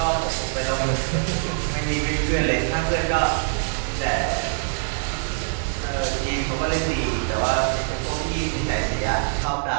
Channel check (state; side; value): silent; left; 63 dB below the other